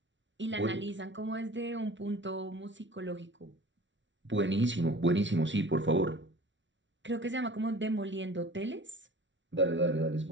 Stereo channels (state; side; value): late; left; 0.55 ms